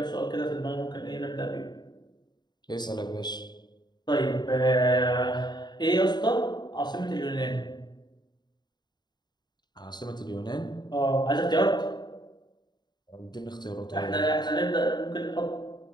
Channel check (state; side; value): late; right; 0.21 ms